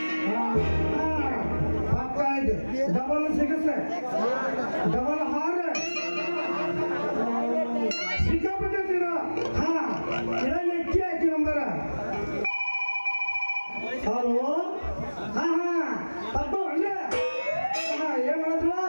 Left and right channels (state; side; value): inverted; both; correlation -1.00